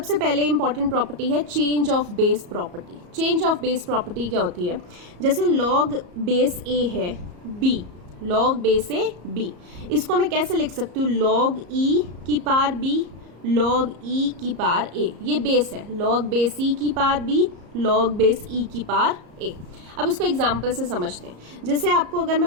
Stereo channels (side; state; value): left; late; 34 ms